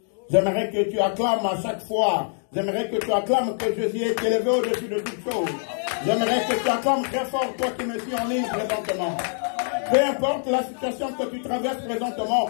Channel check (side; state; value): right; silent; digital silence